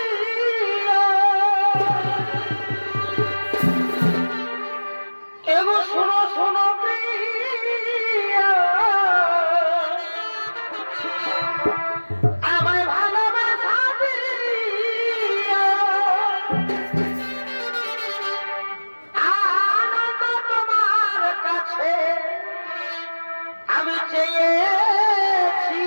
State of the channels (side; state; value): both; inverted; correlation -1.00